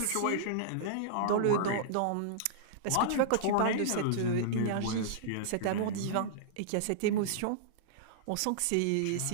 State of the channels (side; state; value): both; different; correlation -0.02